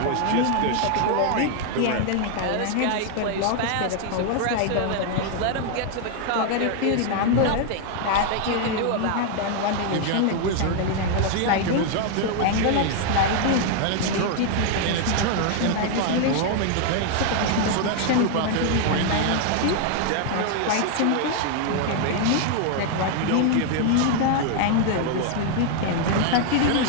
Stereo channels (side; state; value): both; different; correlation 0.00